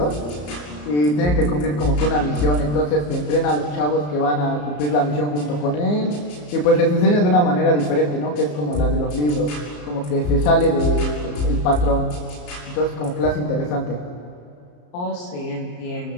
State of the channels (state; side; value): late; right; 34 ms